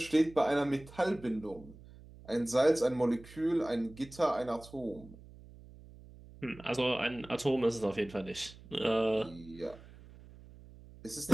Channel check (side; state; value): right; noise; hum, 20 dB below the sound